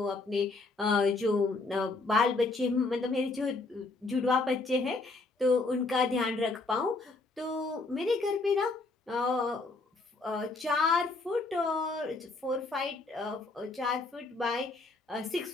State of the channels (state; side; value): quieter; right; 3.5 dB